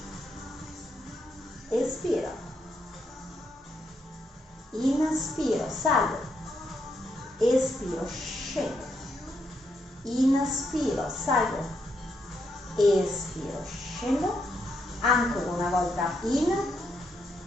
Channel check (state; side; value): normal; both; correlation 0.79